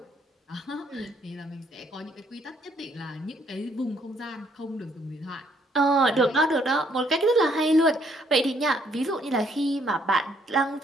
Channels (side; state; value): both; normal; correlation 0.68